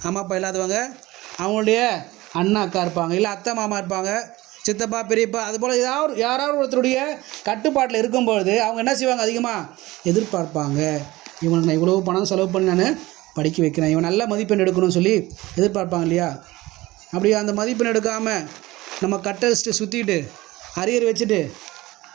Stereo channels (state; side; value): quieter; left; 19.0 dB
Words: அம்மா அப்பா இல்லாதவங்க அவங்களுடைய அண்ணா அக்கா இருப்பாங்க, இல்லை அத்தை மாமா இருப்பாங்க, சித்தப்பா பெரியப்பா, அதுபோல் யாராவது ஒருத்தருடைய கட்டுப்பாட்டில் இருக்கும்பொழுது அவங்க என்ன செய்வாங்க, அதிகமாக எதிர்பார்ப்பாங்க. இவனுக்கு நான் இவ்வளோ பணம் செலவு பண்ணி நான் படிக்க வைக்கிறேன், இவன் நல்ல மதிப்பெண் எடுக்கணும்னு சொல்லி எதிர்பார்ப்பாங்க இல்லையா? அப்படி அந்த மதிப்பெண் எடுக்காமல் நம்ம கட்டடிச்சுட்டு சுற்றிட்டு அரியர் வச்சுட்டு